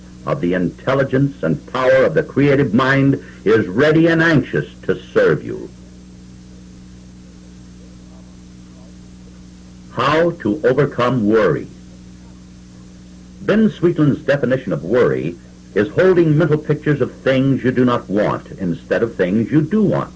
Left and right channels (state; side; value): identical; both; correlation 1.00